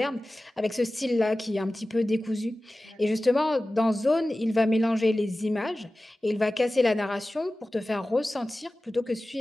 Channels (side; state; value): both; normal; correlation 0.96